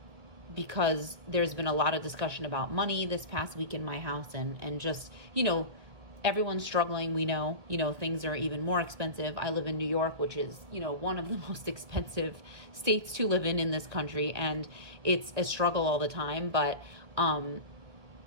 because there's been a lot of discussion about money this past week in my house, and just, everyone's struggling. We know, things are even more expensive. I live in New York, which is, one of the most expensive states to live in this country. And it's a struggle all the time. But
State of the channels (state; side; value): late; left; 1.8 ms